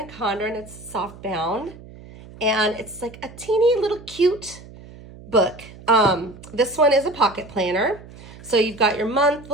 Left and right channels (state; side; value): noise; right; hum, 18 dB below the sound